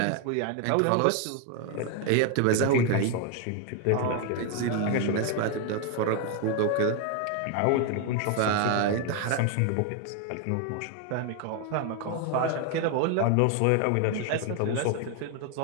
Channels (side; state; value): both; different; correlation 0.01